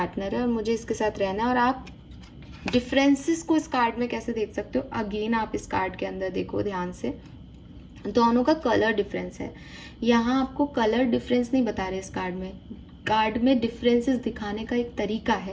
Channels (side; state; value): both; identical; correlation 1.00